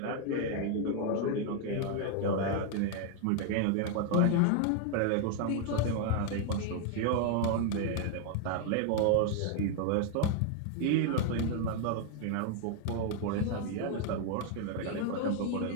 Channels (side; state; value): both; different; correlation 0.00